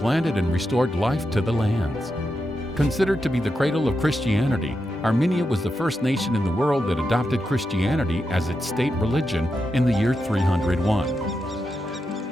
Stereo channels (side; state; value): both; normal; correlation 0.87